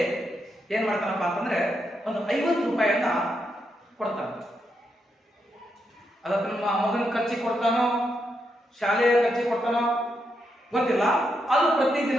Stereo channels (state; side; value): normal; both; correlation 0.82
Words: ಏನ್ ಮಾಡ್ತಾನಪ್ಪ ಅಂತಂದ್ರೆ ಒಂದು 50 ರೂಪಾಯಿಯನ್ನ ಕೊಡ್ತಾನೆ. ಅದಕ್ಕೆ ನಮ್ಮ ಮಗನ ಖರ್ಚಿಗೆ ಕೊಡ್ತಾನೋ, ಶಾಲೆಯ ಖರ್ಚಿಗೆ ಕೊಡ್ತಾನೋ ಗೊತ್ತಿಲ್ಲ. ಅದು